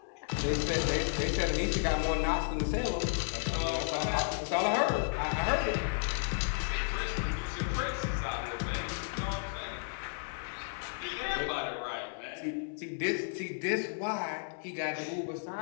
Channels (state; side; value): silent; right; digital silence